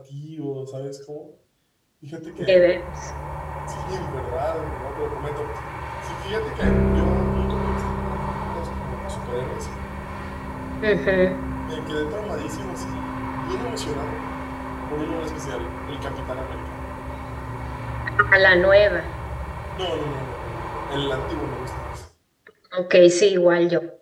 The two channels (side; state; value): both; identical; correlation 1.00